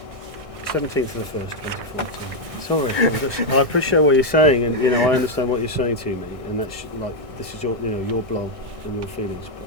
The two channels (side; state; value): left; late; 1.6 ms